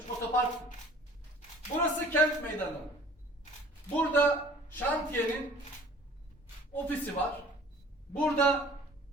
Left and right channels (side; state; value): both; normal; correlation 0.50